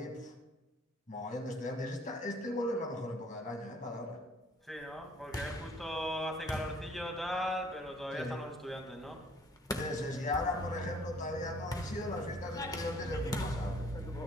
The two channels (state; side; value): normal; both; correlation 0.58